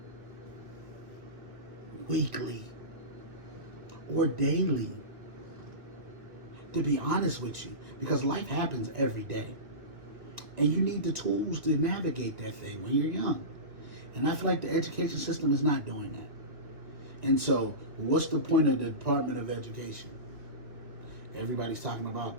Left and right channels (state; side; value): late; left; 2.0 ms